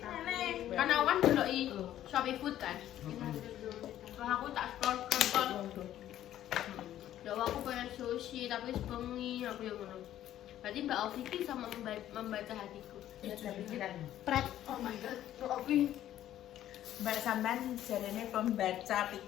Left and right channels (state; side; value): quieter; right; 12.2 dB